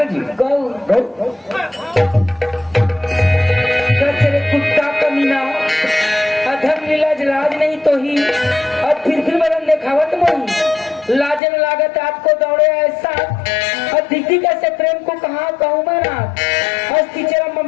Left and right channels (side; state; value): right; drops out; at 11.4 s